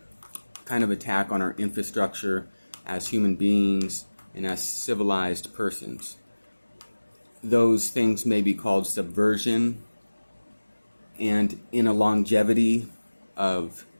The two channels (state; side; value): inverted; both; correlation -1.00